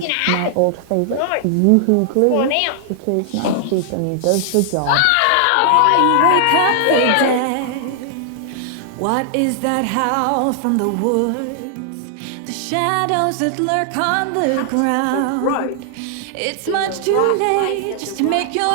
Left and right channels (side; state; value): both; different; correlation 0.00